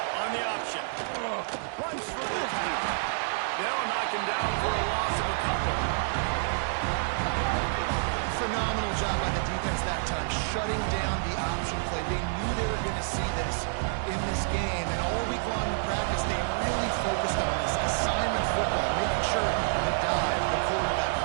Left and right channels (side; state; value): left; silent; digital silence